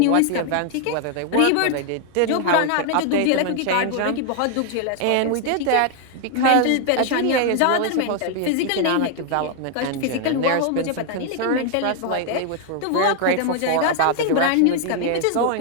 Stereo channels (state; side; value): different; both; correlation 0.00